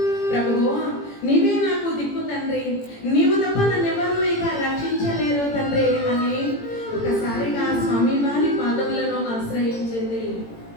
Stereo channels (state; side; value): late; right; 18 ms